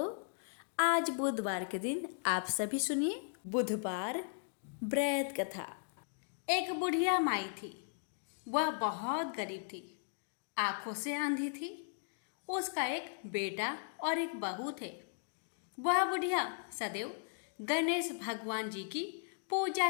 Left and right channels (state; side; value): silent; right; digital silence